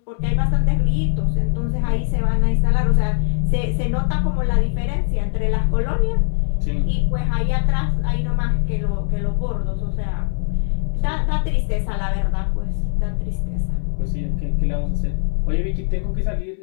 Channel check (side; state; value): right; silent; digital silence